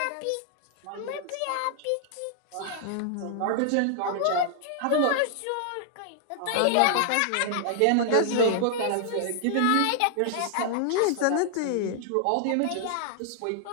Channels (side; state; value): both; different; correlation 0.00